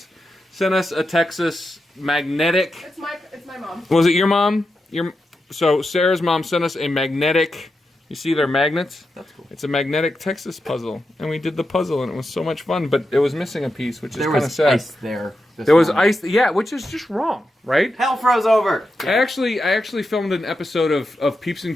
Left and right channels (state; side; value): normal; both; correlation 0.88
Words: sent us a Texas magnetic. It's my mom. Was it your mom? So Sarah's mom sent us a magnetic. You see their magnets? That's cool. It's a magnetic Texas puzzle, and we did the puzzle, and it was so much fun. But it was missing a piece, which is There kind of was sad. ice there. There was ice, yeah, which is just wrong, right? Hell froze over. I actually filmed an episode of Peeps